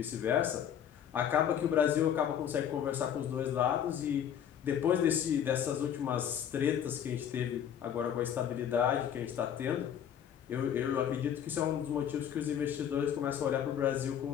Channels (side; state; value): right; quieter; 9.2 dB